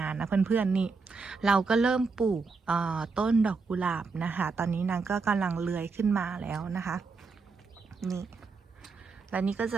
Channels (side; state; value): left; quieter; 4.5 dB